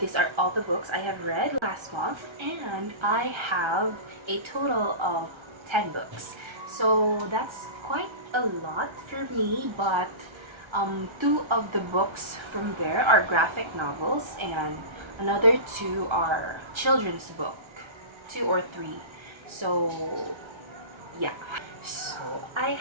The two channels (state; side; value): late; left; 1.3 ms